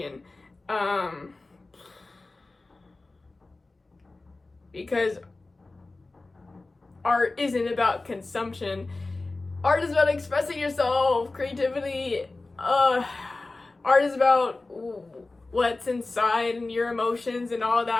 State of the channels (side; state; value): right; quieter; 3.3 dB